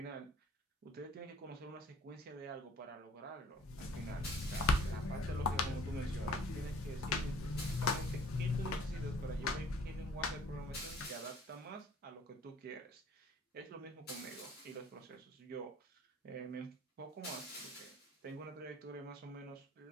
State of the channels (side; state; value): both; normal; correlation 0.54